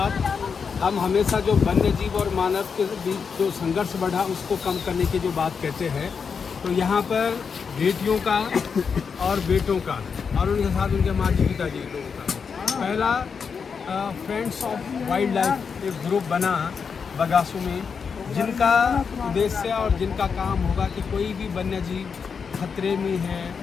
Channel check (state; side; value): quieter; right; 6.0 dB